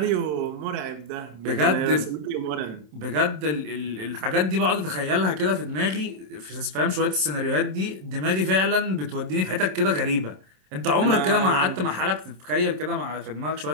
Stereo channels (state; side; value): late; left; 27 ms